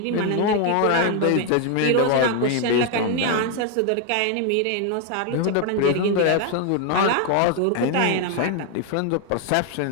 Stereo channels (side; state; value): both; different; correlation 0.00